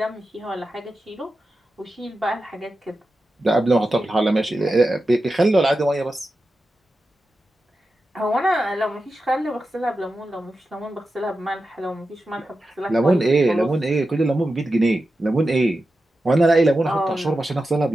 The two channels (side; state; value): both; normal; correlation 0.91